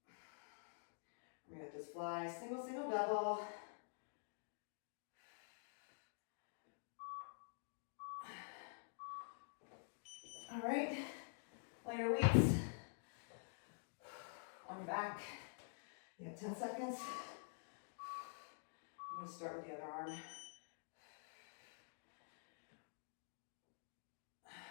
We got this fly, single, double. All right, lighter weights on your back. You have 10 seconds. I'm going to start with the other arm.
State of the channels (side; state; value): right; silent; digital silence